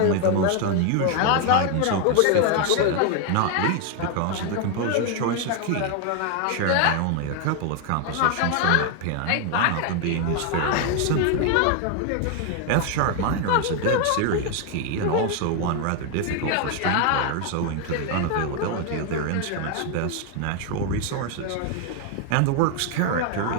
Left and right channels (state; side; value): different; both; correlation 0.01